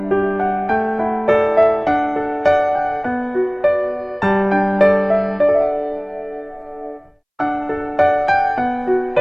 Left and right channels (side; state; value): both; identical; correlation 1.00